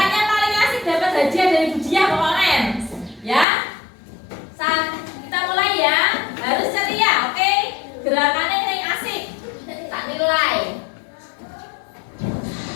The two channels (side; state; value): right; drops out; at 3.5 s